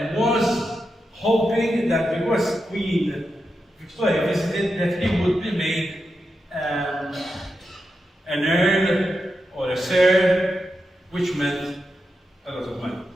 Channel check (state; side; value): normal; both; correlation 0.88